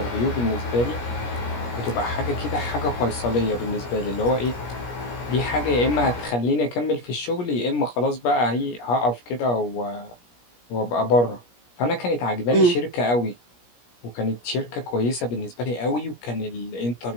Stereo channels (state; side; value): late; right; 17 ms